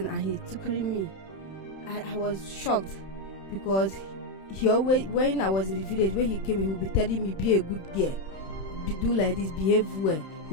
and he took me. I was shocked because he always, when I was in the village, when he came, he would be telling me, be a good girl, do like this, behave well.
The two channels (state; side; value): late; right; 31 ms